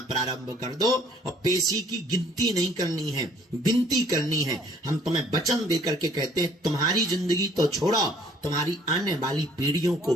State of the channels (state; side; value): normal; both; correlation 0.58